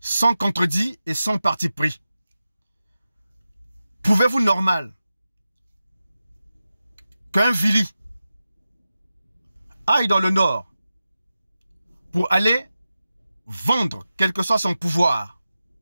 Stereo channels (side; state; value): both; inverted; correlation -0.93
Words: contredit et sans parti pris. Pouvez-vous normal qu'un Vili aille dans le nord pour aller vendre, quel que soit son pouvoir,